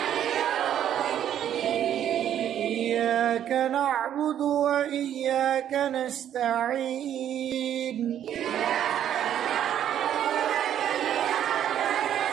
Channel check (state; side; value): quieter; left; 10.4 dB